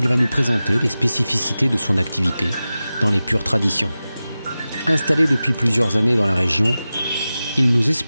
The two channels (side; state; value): both; inverted; correlation -0.95